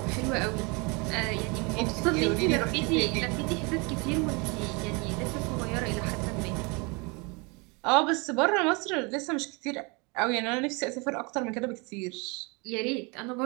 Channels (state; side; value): quieter; left; 29.5 dB